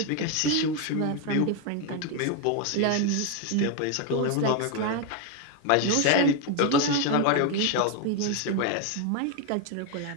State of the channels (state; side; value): different; both; correlation 0.01